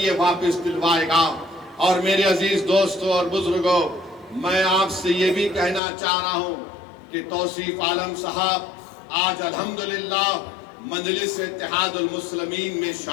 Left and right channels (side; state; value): right; drops out; at 5.8 s